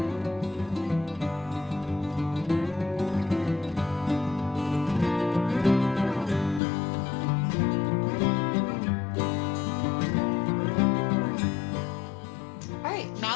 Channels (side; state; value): right; drops out; at 6.6 s